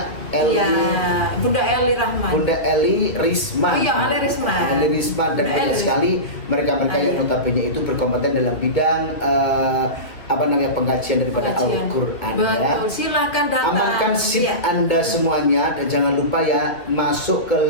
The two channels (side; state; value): right; late; 2.6 ms